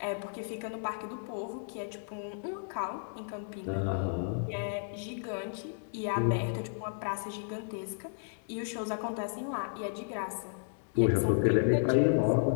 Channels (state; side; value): silent; right; digital silence